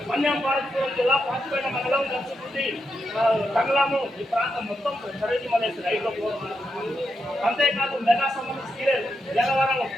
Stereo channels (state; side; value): normal; both; correlation 0.84